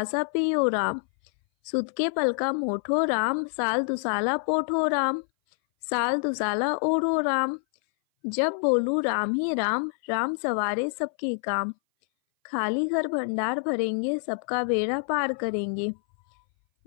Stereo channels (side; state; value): right; silent; 59 dB below the other